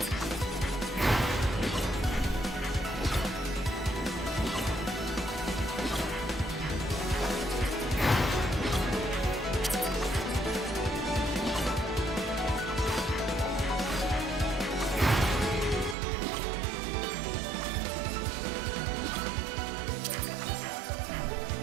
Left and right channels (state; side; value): drops out; left; at 16.0 s